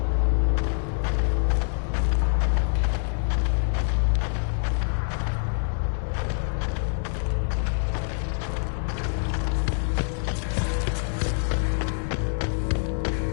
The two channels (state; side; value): silent; right; digital silence